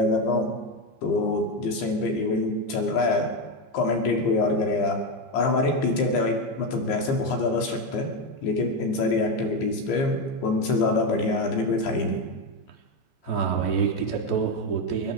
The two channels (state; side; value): late; right; 15 ms